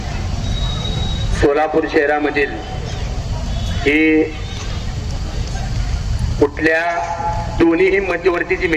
सोलापूर शहरामधील ही कुठल्या दोन्हीही मध्यवर्तीची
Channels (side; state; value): both; identical; correlation 1.00